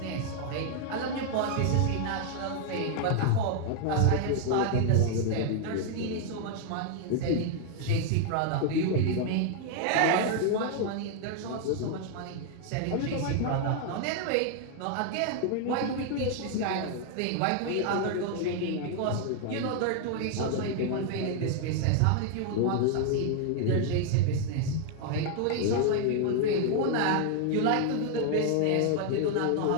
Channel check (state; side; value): different; both; correlation 0.00